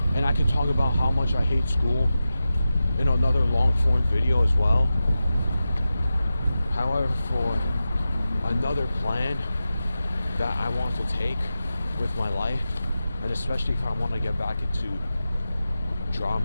and I can talk about how much I hate school in another long form video as well. However, for another plan that I want to take with my life, and especially if I want to get back into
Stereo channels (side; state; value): both; inverted; correlation -0.93